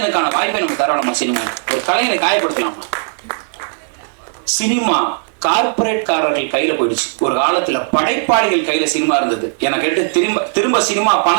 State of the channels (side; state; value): left; silent; digital silence